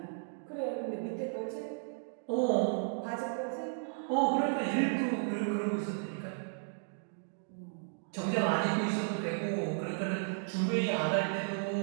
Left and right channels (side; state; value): left; silent; digital silence